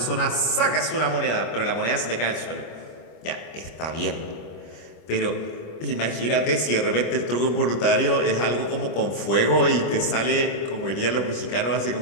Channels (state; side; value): late; right; 25 ms